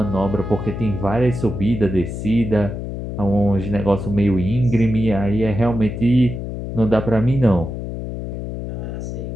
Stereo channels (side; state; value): left; noise; hum, 6 dB below the sound